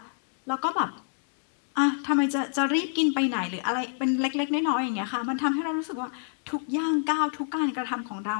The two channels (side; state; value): right; silent; digital silence